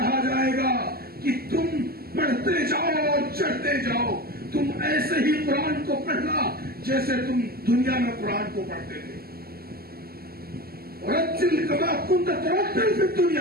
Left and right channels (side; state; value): left; late; 0.45 ms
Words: جائے گا کہ تم پڑھتے جاؤ اور چڑھتے جاؤ، تم ایسے ہی قرآن کو پڑھنا جیسے تم دنیا میں قرآن کو پڑھتے تھے. رتل کما کنت ترتل فی